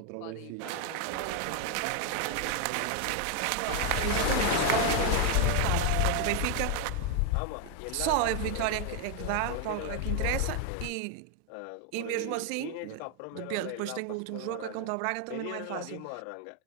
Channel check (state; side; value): different; both; correlation 0.01